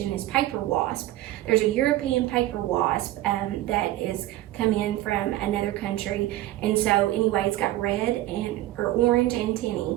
is paper wasp. There's a European paper wasp that is come in from another country, and so anyway, it's got red or orange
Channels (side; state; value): left; quieter; 15.4 dB